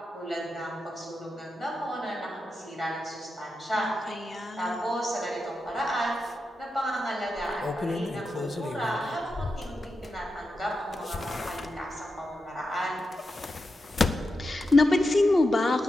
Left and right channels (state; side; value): normal; both; correlation 0.88